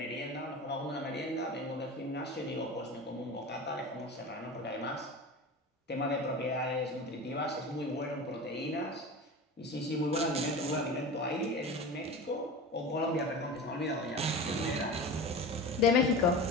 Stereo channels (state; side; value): normal; both; correlation 0.31